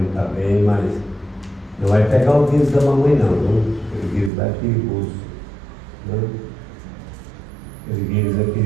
está bem, mas não vai pegar o vírus da mamãe não, viu? Aquele vírus lá é perigoso, né? Aquele vírus é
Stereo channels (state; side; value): drops out; left; at 4.3 s